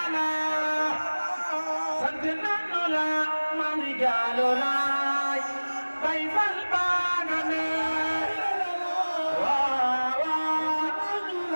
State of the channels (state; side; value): inverted; both; correlation -1.00